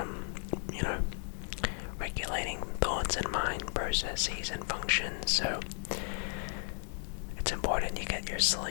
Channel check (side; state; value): right; silent; 55 dB below the other